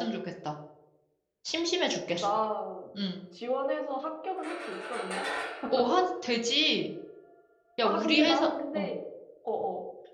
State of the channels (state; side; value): identical; both; correlation 1.00